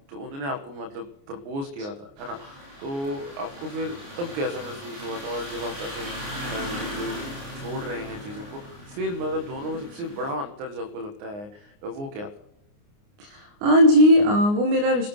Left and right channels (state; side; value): late; left; 29 ms